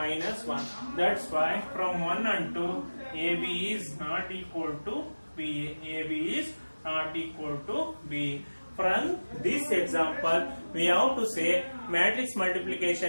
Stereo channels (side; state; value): both; inverted; correlation -1.00